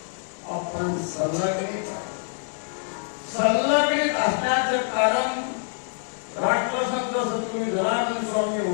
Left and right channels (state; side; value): silent; right; digital silence